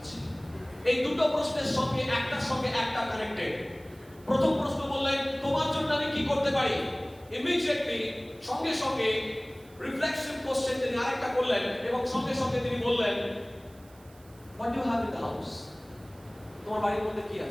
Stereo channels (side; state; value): right; noise; hiss, 27 dB below the sound